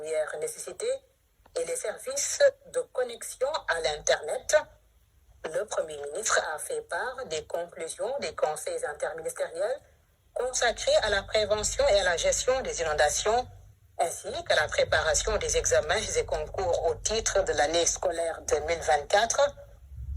nécessité et les services de connexion à l'Internet. Le Premier ministre a fait part des conclusions des conseils interministériels consacrés à la prévention et à la gestion des inondations, ainsi qu'à la préparation des examens et concours au titre de l'année scolaire 2024.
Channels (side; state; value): both; identical; correlation 1.00